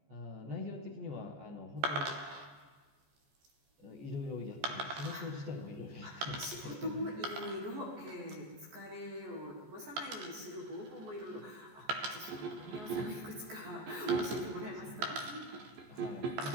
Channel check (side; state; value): left; late; 14 ms